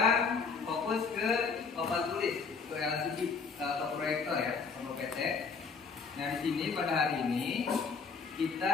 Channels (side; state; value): right; quieter; 5.1 dB